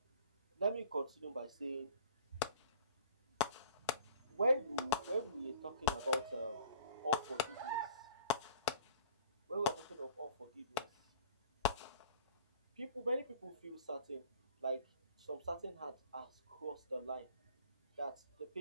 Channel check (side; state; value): both; inverted; correlation -0.49